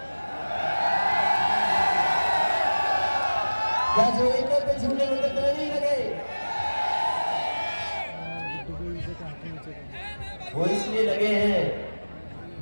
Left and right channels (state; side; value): inverted; both; correlation -1.00